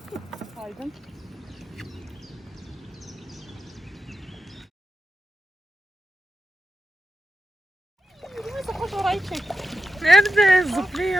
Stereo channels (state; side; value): normal; both; correlation 0.89